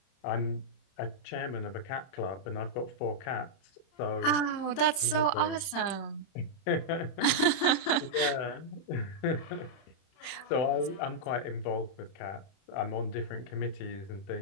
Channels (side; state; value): right; late; 31 ms